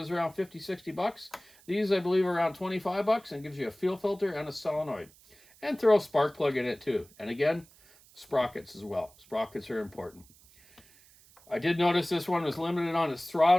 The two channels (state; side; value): noise; right; hiss, 26 dB below the sound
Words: around 50-60 bucks. These I believe are around 25 bucks, and gives you a fuel filter and a solenoid. And throw a spark plug in it too. And again, sprockets as well. Sprockets are important. I did notice this one was limited on its